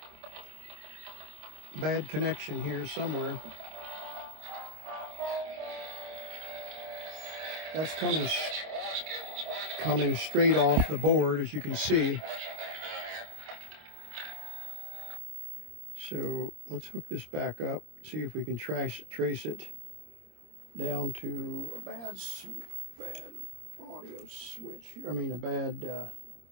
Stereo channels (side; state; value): left; late; 26 ms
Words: bad connection here somewhere. That's coming straight off the board, as you can see. So let's hook this back up, see if we can trace it down to a bad audio switch. I mean, a bad